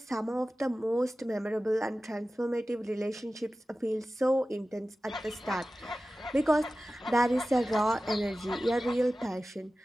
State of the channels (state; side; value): normal; both; correlation 0.95